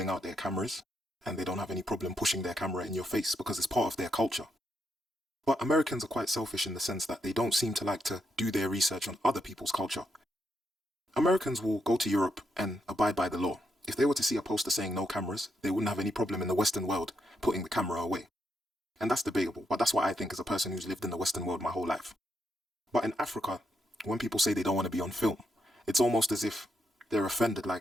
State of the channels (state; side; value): normal; both; correlation 0.80